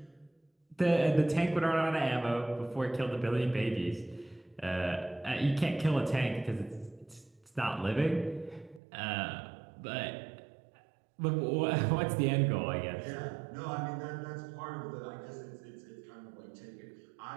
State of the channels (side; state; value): left; drops out; at 8.8 s